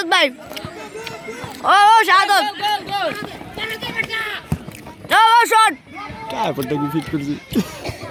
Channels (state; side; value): identical; both; correlation 1.00